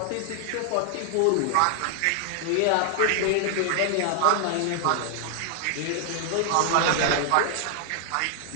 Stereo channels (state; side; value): different; both; correlation 0.00